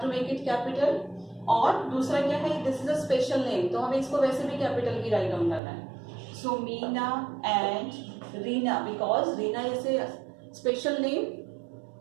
to make it capital. और दूसरा क्या है? This is a special name. तो हमें इसको वैसे भी capital की राइट डाउन करना है. So Meena and Reena because Reena is a special name,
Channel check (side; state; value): left; drops out; at 5.6 s